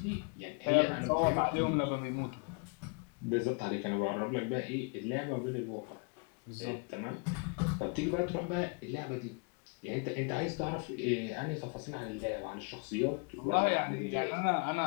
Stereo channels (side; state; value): right; quieter; 34.8 dB